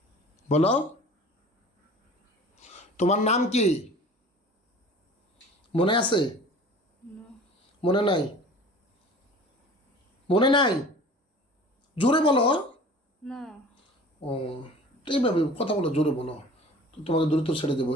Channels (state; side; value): normal; both; correlation 0.44